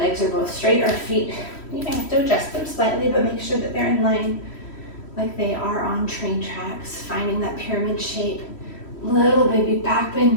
are both straight. Our feet, you may have to adjust them slightly, but make sure that they're in line like they are on train tracks. Finding that pyramid shape. Little baby back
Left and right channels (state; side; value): late; right; 3.1 ms